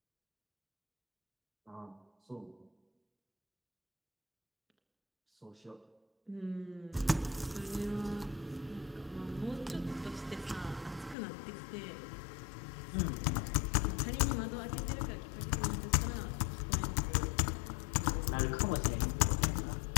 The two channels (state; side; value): drops out; right; at 11.2 s